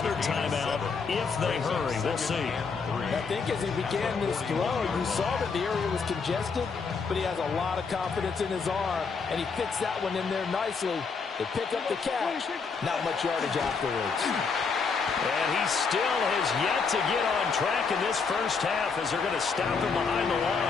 timeout if they hurry. We'll see. I think as he began this throw, you saw that the area was congested, but he has a lot of confidence in his arm, and he fits that one in there nicely. They pick up the catch. Not much yardage afterwards. And he still has yet to get on track in this first half as they're going to stop him behind the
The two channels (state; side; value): quieter; right; 5.1 dB